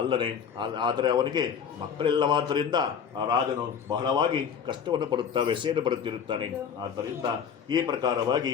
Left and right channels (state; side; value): quieter; right; 7.3 dB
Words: ಆದರೆ ಅವನಿಗೆ ಮಕ್ಕಳಿಲ್ಲವಾದ್ದರಿಂದ ಆ ರಾಜನು ಬಹಳವಾಗಿ ಕಷ್ಟವನ್ನು ಪಡುತ್ತಾ ವ್ಯಸೆಯನ್ನು ಪಡುತ್ತಿರುತ್ತಾನೆ. ಆದ್ದರಿಂದ ಈ ಪ್ರಕಾರವಾಗಿ